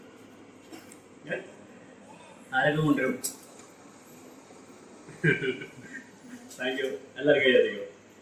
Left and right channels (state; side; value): identical; both; correlation 1.00